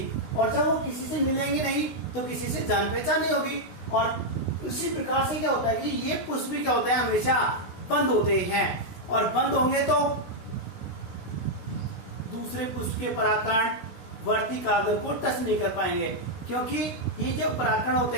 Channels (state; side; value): late; right; 16 ms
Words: और जब वो किसी से मिलेंगे नहीं तो किसी से जान पहचान नहीं होगी। और उसी प्रकार से क्या होता है कि ये पुष्प भी क्या होते हैं, हमेशा बंद होते हैं, और बंद होंगे तो दूसरे पुष्प के परागकण वर्तिकाग्र को टच नहीं कर पाएंगे, क्योंकि ये जो परागकण होते